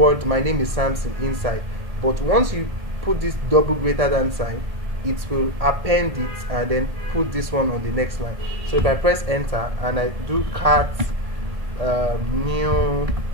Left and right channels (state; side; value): late; left; 1.7 ms